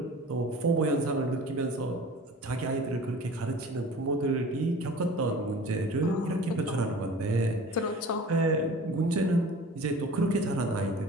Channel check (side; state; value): both; normal; correlation 0.42